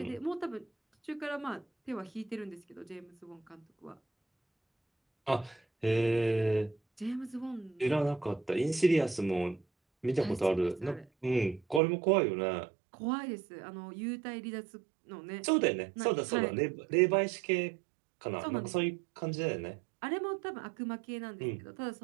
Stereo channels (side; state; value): left; drops out; at 11.8 s